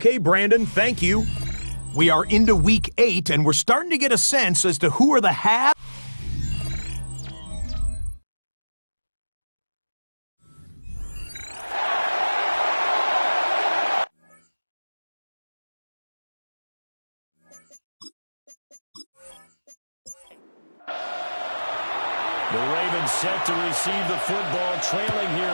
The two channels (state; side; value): inverted; both; correlation -1.00